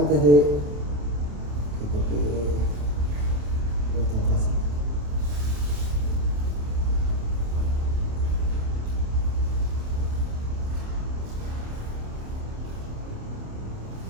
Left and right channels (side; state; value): left; late; 27 ms